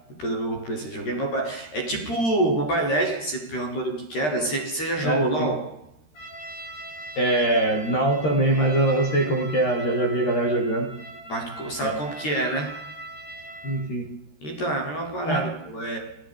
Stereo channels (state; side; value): late; right; 13 ms